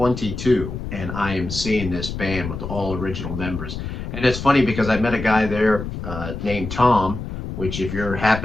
and I am seeing this band with all original members. And it's funny because I met a guy there named Tom, which if you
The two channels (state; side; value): noise; left; rumble, 7 dB below the sound